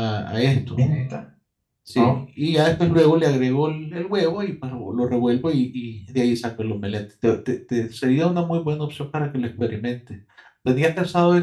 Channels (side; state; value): both; identical; correlation 1.00